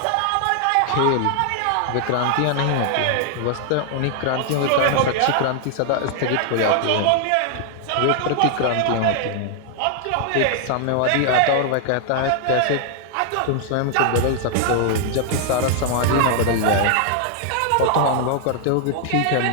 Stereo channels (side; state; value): both; different; correlation 0.00